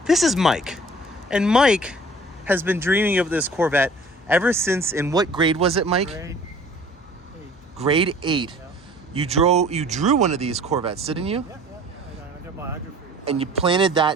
This is Mike. And Mike has been dreaming of this Corvette ever since, in what grade was it, Mike? Grade 8. Yeah. You drew one of these Corvettes, didn't you? Yeah. I got biography. And you planted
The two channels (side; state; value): both; normal; correlation 0.49